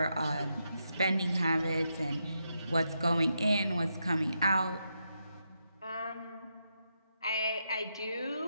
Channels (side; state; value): both; inverted; correlation -0.83